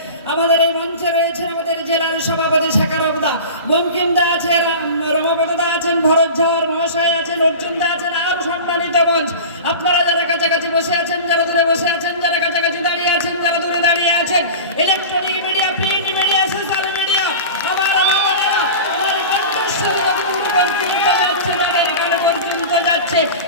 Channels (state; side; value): inverted; both; correlation -0.33